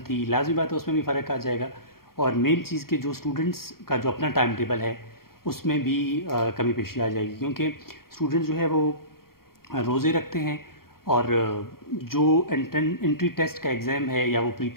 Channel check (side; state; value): right; late; 0.93 ms